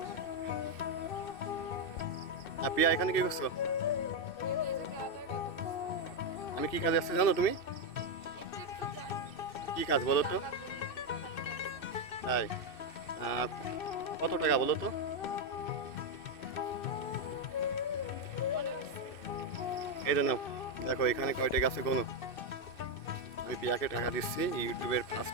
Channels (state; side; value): late; right; 2.6 ms